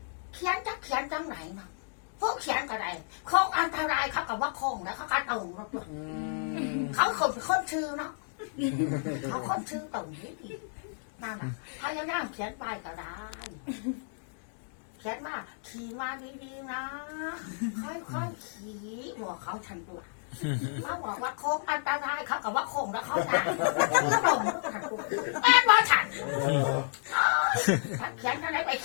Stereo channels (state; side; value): silent; right; digital silence